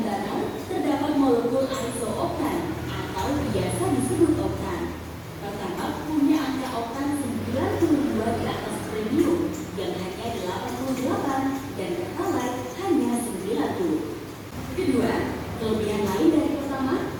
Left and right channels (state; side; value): identical; both; correlation 1.00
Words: bakar terdapat molekul isooktan atau biasa disebut oktan. Pertamax punya angka oktan 92 di atas Premium yang hanya 88 dan Pertalite hanya 90. Kedua, kelebihan lain dari Pertamax